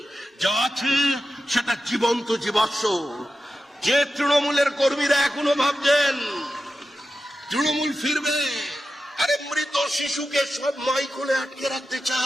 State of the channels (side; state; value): both; normal; correlation 0.91